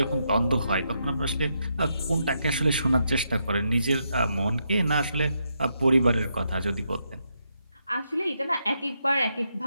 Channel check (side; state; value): both; inverted; correlation -0.81